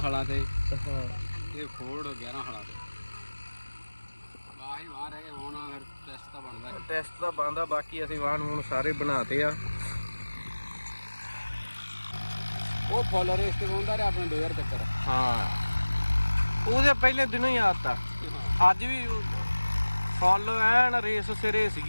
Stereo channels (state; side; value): inverted; both; correlation -1.00